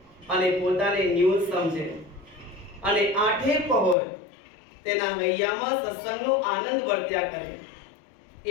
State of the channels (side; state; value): right; drops out; at 4.0 s